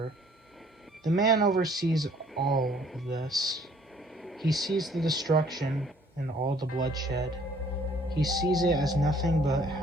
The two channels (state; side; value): normal; both; correlation 0.59